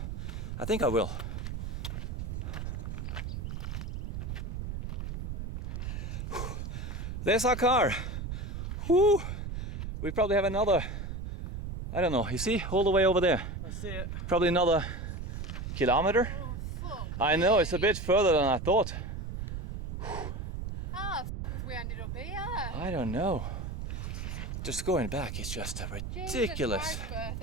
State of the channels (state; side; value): noise; right; rumble, 5 dB below the sound